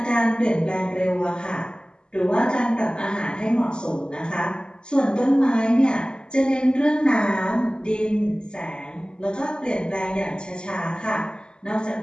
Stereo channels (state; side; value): late; right; 0.048 ms